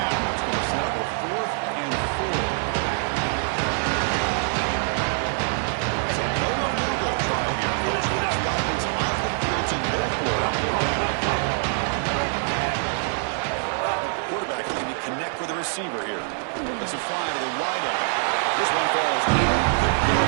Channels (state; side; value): silent; left; 56 dB below the other